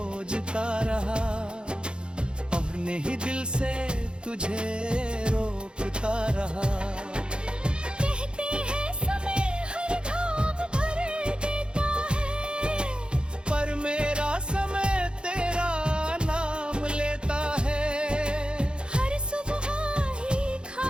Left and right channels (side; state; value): left; late; 0.052 ms